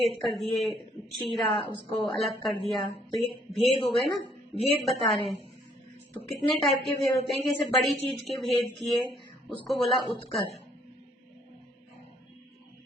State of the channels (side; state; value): both; normal; correlation 0.66